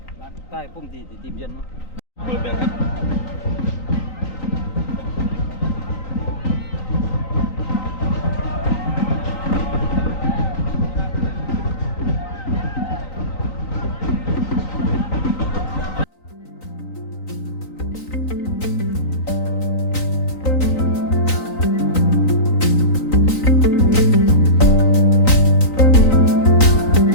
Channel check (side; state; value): right; late; 3.9 ms